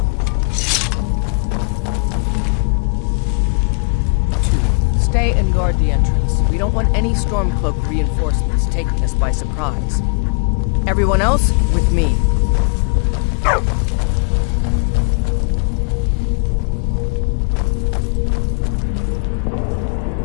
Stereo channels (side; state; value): right; quieter; 34.7 dB